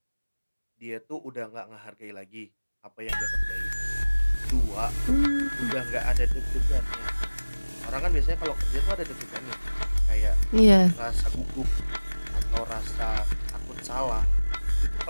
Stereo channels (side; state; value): both; inverted; correlation -1.00